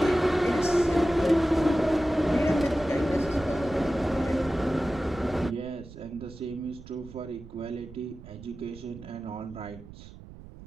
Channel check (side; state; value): right; noise; rumble, 17 dB below the sound